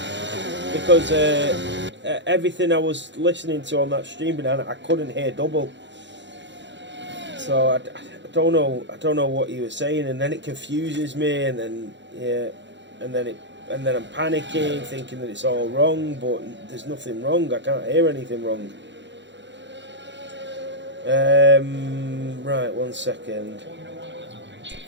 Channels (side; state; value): left; late; 0.52 ms